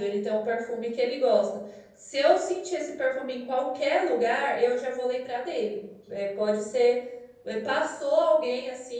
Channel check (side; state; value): both; identical; correlation 1.00